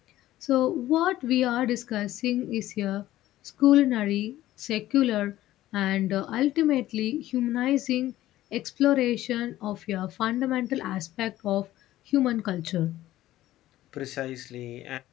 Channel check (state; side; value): quieter; right; 14.8 dB